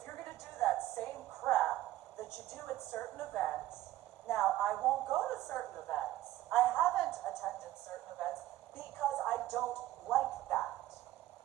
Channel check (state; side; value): quieter; left; 15.0 dB